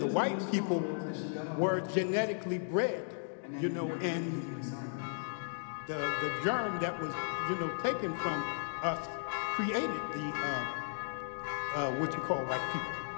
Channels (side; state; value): right; silent; digital silence